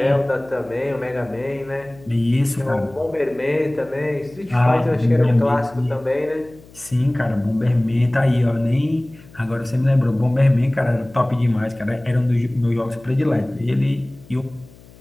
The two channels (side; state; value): left; noise; hum, 23 dB below the sound